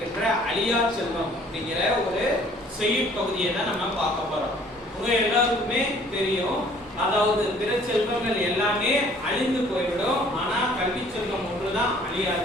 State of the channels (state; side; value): normal; both; correlation 0.56